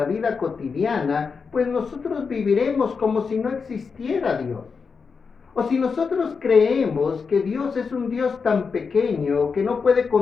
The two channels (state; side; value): quieter; right; 5.3 dB